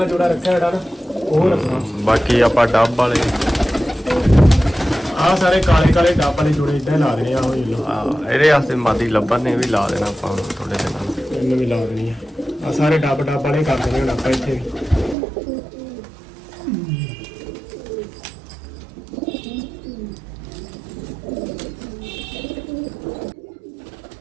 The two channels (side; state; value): left; drops out; at 15.2 s